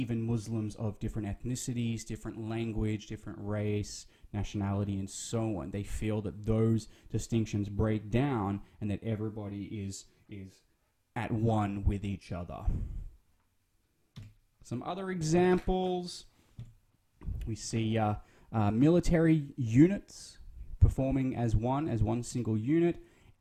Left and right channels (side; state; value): both; identical; correlation 1.00